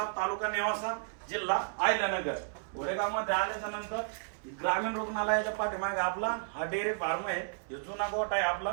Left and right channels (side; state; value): left; silent; 56 dB below the other